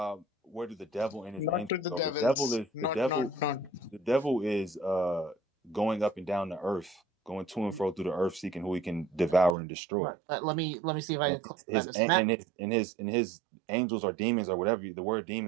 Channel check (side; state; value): left; drops out; at 9.6 s